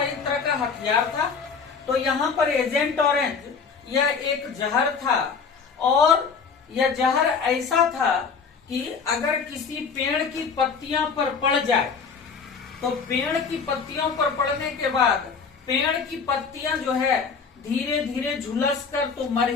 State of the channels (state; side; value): quieter; right; 5.6 dB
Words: एक तरह का हथियार था। तो यहाँ पर एजेंट ऑरेंज यह एक जहर था, और यह जहर ऐसा था कि अगर किसी पेड़ की पत्तियां पर पड़ जाए तो पेड़ की पत्तियों पर पड़ने के बाद पेड़ की पत्तियां जो है धीरे धीरे झुलस कर तो मर